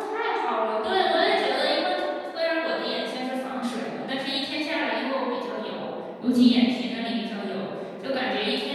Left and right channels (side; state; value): both; identical; correlation 1.00